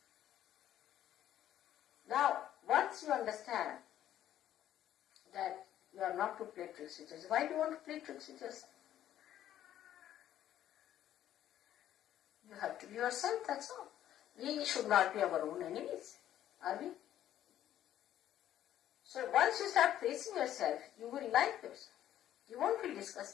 Now, once you understand that you are not to play tricks with yourself, why do you want to play tricks with yourself? You have to be yourself, that's all. We should not be our own enemies, are we? So once you start facing yourself, you will like yourself. You won't feel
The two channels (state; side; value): quieter; right; 11.7 dB